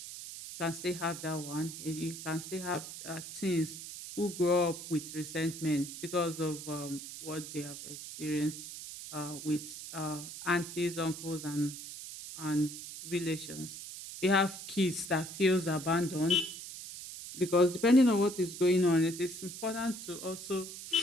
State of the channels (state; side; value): noise; right; hiss, 10 dB below the sound